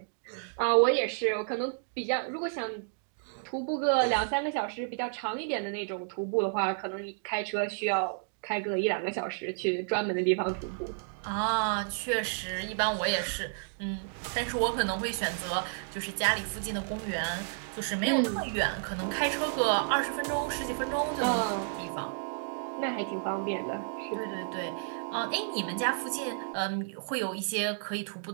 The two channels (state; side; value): silent; left; digital silence